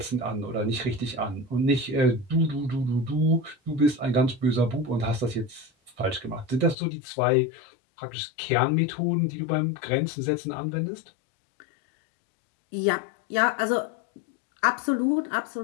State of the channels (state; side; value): drops out; right; at 6.8 s